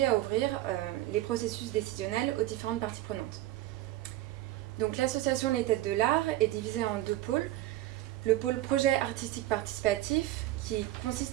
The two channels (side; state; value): left; quieter; 15.2 dB